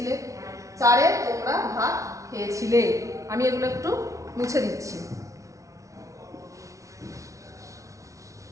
4 তোমরা ভাত খেয়েছিলে। আমি এগুলো একটু মুছে দিচ্ছি।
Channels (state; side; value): late; left; 0.15 ms